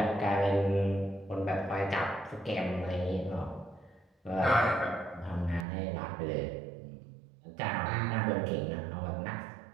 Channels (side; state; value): left; drops out; at 5.7 s